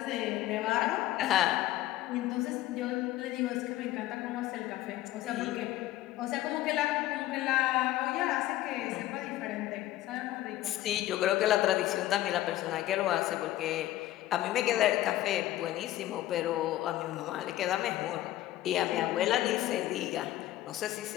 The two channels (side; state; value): right; quieter; 14.9 dB